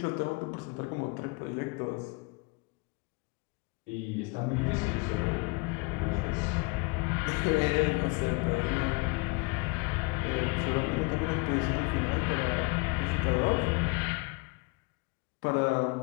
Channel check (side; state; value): right; quieter; 28.2 dB